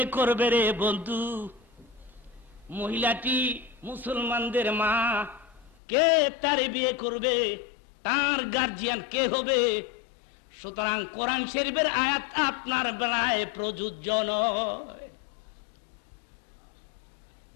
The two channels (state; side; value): drops out; right; at 5.8 s